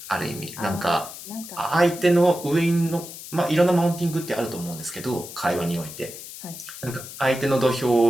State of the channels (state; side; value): noise; left; hiss, 13 dB below the sound